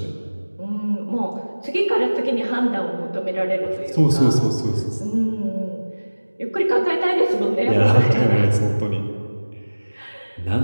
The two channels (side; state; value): both; inverted; correlation -1.00